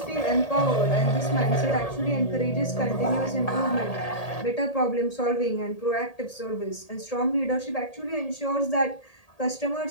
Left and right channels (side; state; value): right; late; 1.8 ms